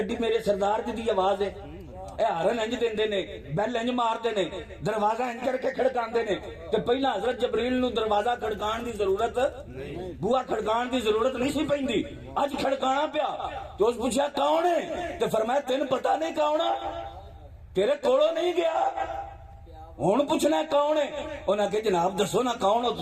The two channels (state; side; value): identical; both; correlation 1.00